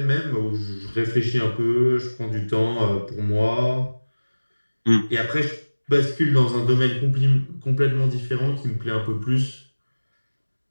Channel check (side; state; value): both; inverted; correlation -1.00